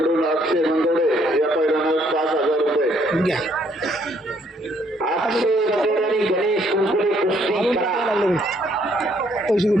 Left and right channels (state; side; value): normal; both; correlation 0.67